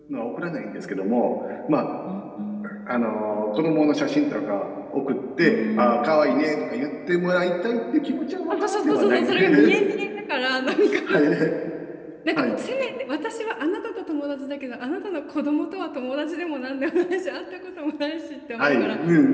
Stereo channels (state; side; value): identical; both; correlation 1.00